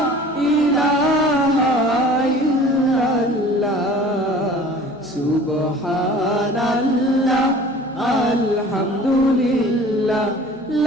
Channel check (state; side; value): noise; left; hum, 27 dB below the sound